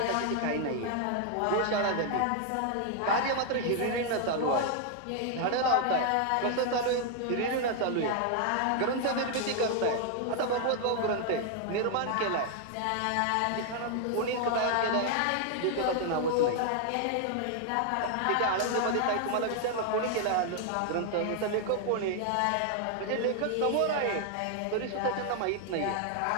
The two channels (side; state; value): both; different; correlation 0.00